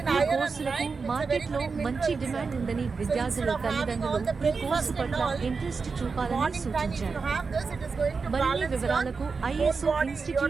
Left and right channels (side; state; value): left; quieter; 4.8 dB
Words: ఈ కోర్సులకు మార్కెట్లో మంచి డిమాండ్ ఉందని విద్యార్థుల తల్లిదండ్రులు ఈ కోర్సు పట్ల ఇంట్రెస్ట్ చూపాలని సూచించారు. మరిన్ని వివరాలకు ఐఎస్ఓ